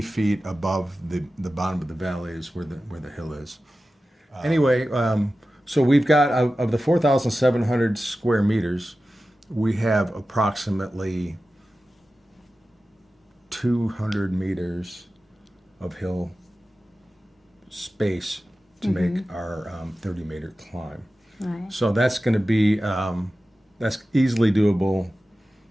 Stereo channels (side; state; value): both; normal; correlation 0.94